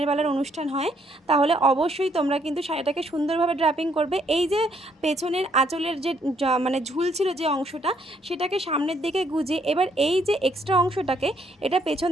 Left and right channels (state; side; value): normal; both; correlation 0.70